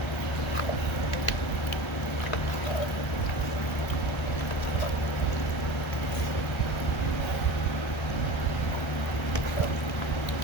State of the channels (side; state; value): right; late; 1.3 ms